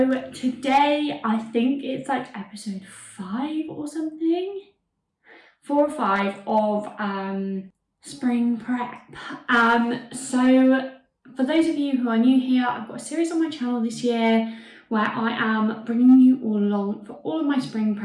today I think it's like episode 5 or something, 4 or 5 of spring prep. So for those of you who are new here, I've got a series on my channel this year where I am bringing you all along for all of my spring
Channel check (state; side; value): identical; both; correlation 1.00